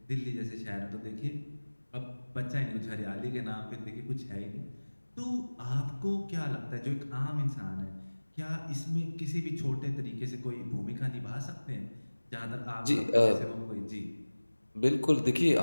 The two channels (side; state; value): both; inverted; correlation -1.00